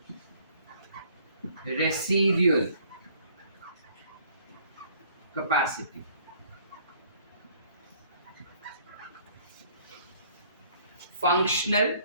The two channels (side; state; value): both; inverted; correlation -0.59